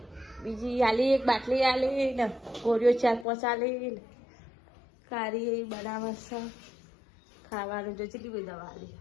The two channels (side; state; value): right; drops out; at 3.2 s